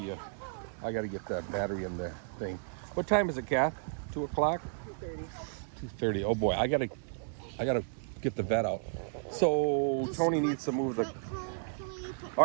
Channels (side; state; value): left; silent; digital silence